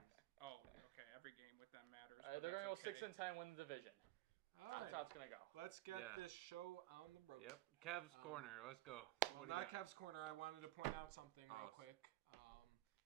Oh, okay. Every game with that matters. They're gonna go 6-10, win the division. All Top right, top's gonna go. let's get Yeah. this show on the road. Yep. Cavs corner. Let's go. Well, What do not you got? Kev's corner. I wanted to point out something real Oh. quick.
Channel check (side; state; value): left; quieter; 17.1 dB